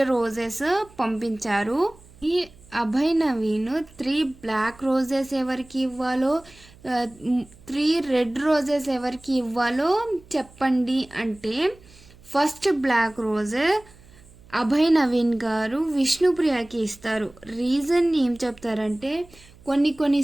రోజెస్ పంపించారు. ఈ అభయ్ నవీన్ 3 బ్లాక్ రోజెస్ ఎవరికి ఇవ్వాలో, 3 రెడ్ రోజెస్ ఎవరికి ఇవ్వాలో చెప్పండి అంటే, first black rose Abhay Naveen గారు విష్ణుప్రియకి ఇస్తారు. రీజన్ ఏం చెప్తారంటే,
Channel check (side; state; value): right; noise; hum, 24 dB below the sound